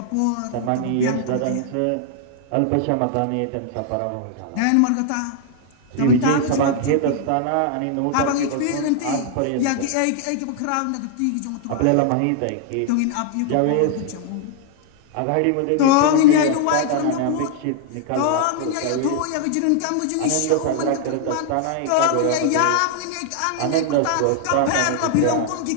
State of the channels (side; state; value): both; different; correlation 0.00